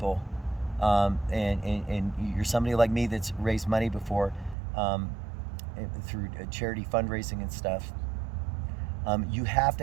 and you're somebody like me that's raised money before through charity fundraising and stuff, you have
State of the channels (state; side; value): drops out; left; at 4.5 s